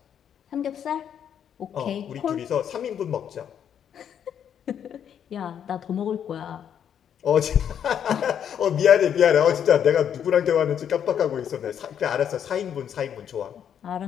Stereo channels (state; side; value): quieter; right; 8.8 dB